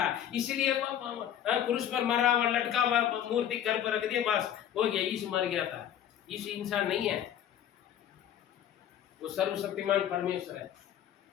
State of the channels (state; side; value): quieter; right; 10.4 dB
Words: इसलिए क्रूस पर मरा हुआ लटका हुआ मूर्ति घर पर रख दिया, बस हो गया, यीशु मर गया था। यीशु इंसान नहीं है, वो सर्वशक्तिमान परमेश्वर है,